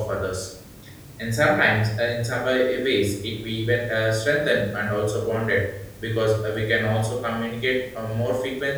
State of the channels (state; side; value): identical; both; correlation 1.00